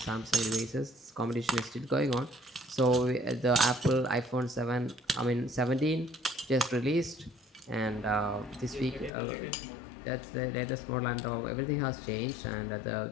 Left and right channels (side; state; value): right; drops out; at 9.1 s